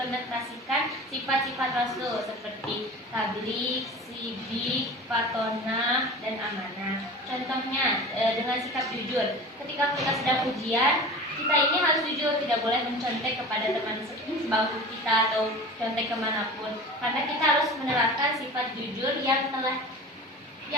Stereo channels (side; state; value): both; normal; correlation 0.35